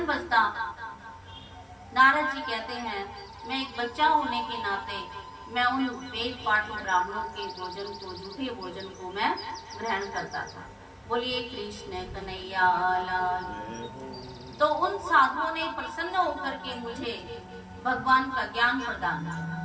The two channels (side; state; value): both; identical; correlation 1.00